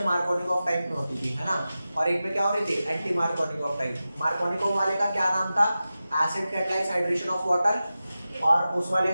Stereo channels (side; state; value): both; inverted; correlation -0.94